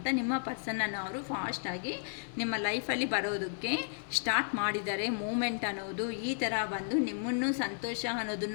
ನಿಮ್ಮ ಪರ್ಸನನ್ನು ಅವರು ಫಾಸ್ಟಾಗಿ ನಿಮ್ಮ ಲೈಫಲ್ಲಿ ಬರೋದಕ್ಕೆ ಸ್ಟಾರ್ಟ್ ಮಾಡಿದ್ದಾರೆ. ಮೂಮೆಂಟ್ ಅನ್ನೋದು ಈ ಥರ ಬಂದು ನಿಮ್ಮನ್ನು ಸಂತೋಷ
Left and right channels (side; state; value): right; silent; 55 dB below the other